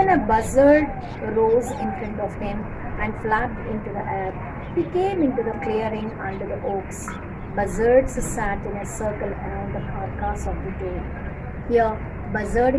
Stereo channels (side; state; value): both; identical; correlation 1.00